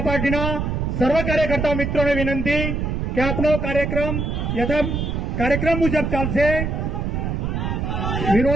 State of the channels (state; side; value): noise; right; rumble, 1 dB below the sound